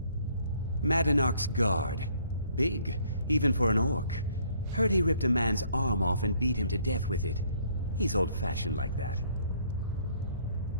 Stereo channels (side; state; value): both; inverted; correlation -0.63